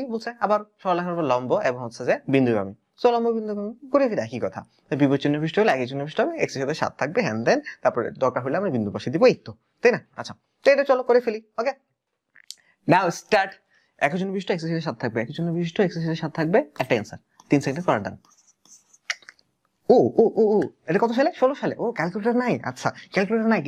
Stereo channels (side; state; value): both; identical; correlation 1.00